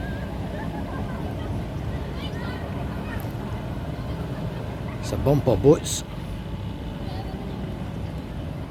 It's a bumper boats.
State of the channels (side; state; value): both; identical; correlation 1.00